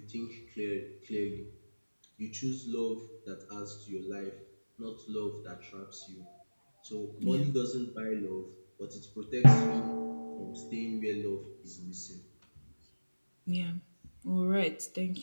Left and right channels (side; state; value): both; inverted; correlation -1.00